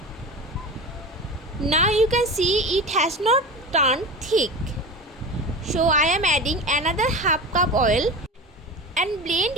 Now you can see it has not turned thick. So I am adding another half cup oil and blend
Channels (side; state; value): both; normal; correlation 0.30